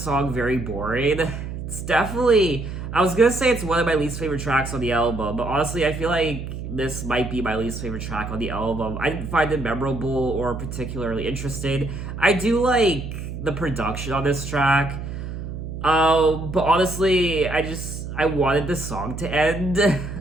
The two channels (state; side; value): noise; right; hum, 7 dB below the sound